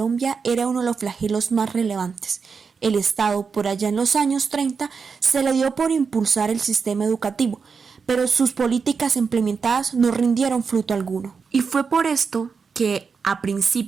era uno de los flagelos más relevantes. El Estado, por allá en los años 30, se le dio por impulsar el sistema educativo, pero sus políticas implementadas no rindieron fruto alguno. Y fue por esto que a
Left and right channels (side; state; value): left; quieter; 5.5 dB